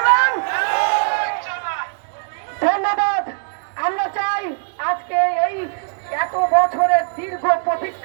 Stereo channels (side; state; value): left; silent; digital silence